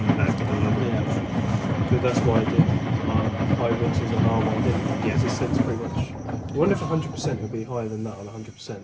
that level. Yeah. But that's why I did high rinses on our one, didn't it? Yeah. Because it sets pretty much. I wonder if 100% would be higher than that on 100%.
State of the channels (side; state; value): both; identical; correlation 1.00